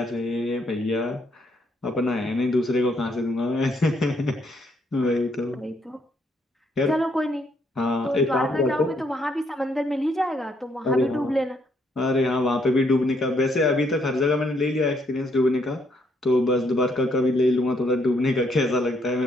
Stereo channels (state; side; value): normal; both; correlation 0.72